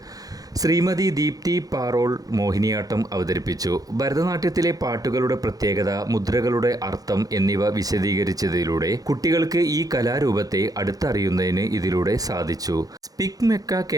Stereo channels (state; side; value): late; left; 0.18 ms